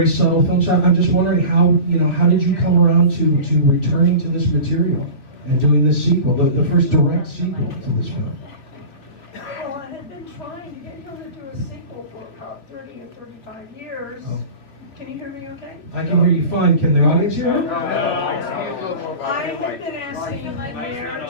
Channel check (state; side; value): late; right; 3.7 ms